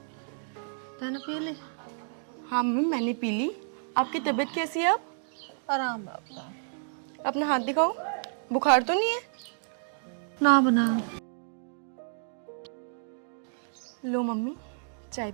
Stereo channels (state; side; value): silent; left; digital silence